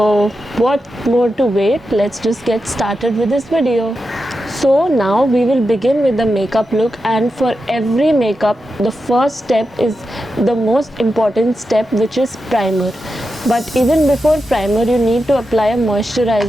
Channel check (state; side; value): normal; both; correlation 0.89